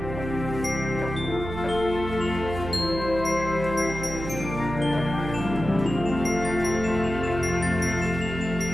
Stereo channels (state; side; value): noise; right; hum, 8 dB below the sound